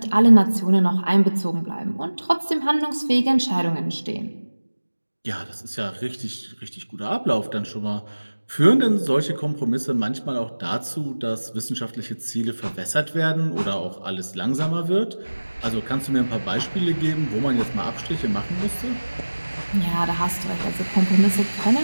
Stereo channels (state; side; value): inverted; both; correlation -1.00